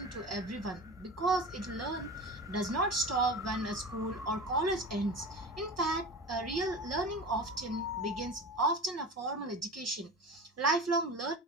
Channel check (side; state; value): both; normal; correlation 0.31